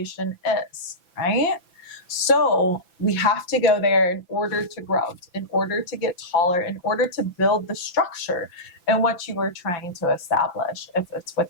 is, right? So we have to go there in order to grow, in order to get taller, in order to build the structure in what you were trying to establish. If it's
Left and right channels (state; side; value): late; right; 5.9 ms